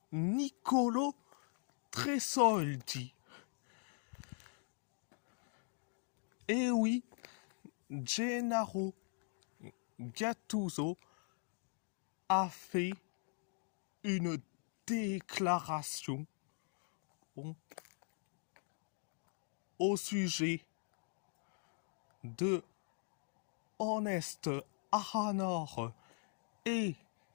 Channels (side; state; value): right; silent; 50 dB below the other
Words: Nicolo Tresoldi. Et oui, Gennaro Gattuso a fait une déclaration au sujet de Honest Ahanor et